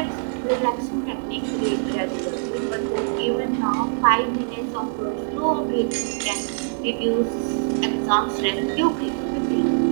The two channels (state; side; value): silent; left; digital silence